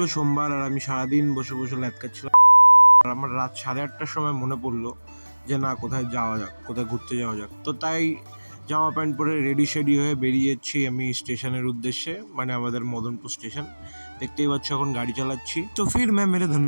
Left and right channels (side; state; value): both; inverted; correlation -1.00